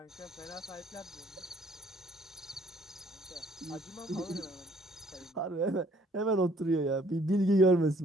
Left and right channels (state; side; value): normal; both; correlation 0.62